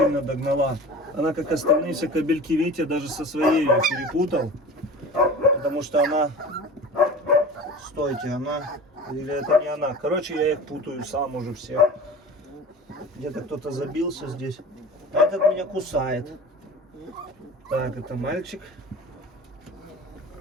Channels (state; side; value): normal; both; correlation 0.37